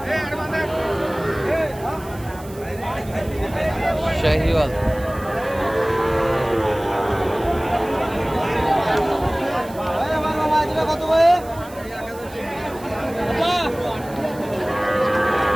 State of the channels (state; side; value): noise; right; hiss, 21 dB below the sound